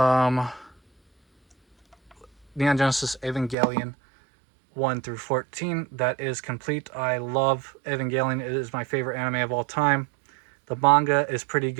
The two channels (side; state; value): left; drops out; at 3.6 s